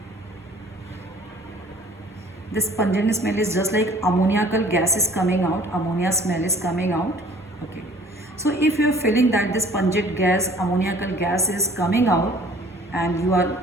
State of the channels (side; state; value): both; normal; correlation 0.52